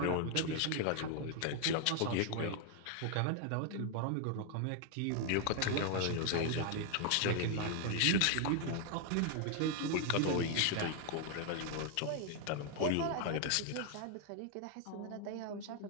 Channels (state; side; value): different; both; correlation 0.00